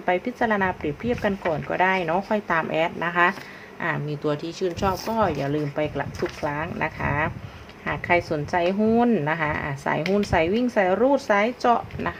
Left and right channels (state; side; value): identical; both; correlation 1.00